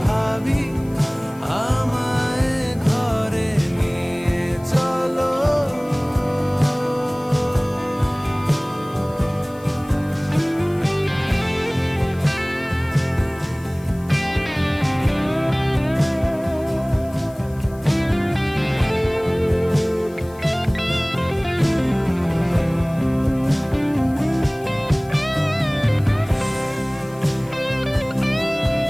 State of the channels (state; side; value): noise; left; hiss, 25 dB below the sound